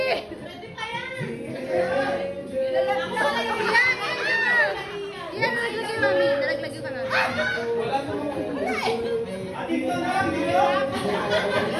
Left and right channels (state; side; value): identical; both; correlation 1.00